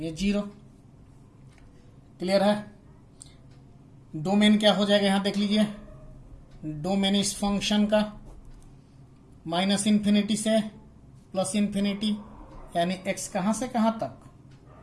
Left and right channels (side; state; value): both; identical; correlation 1.00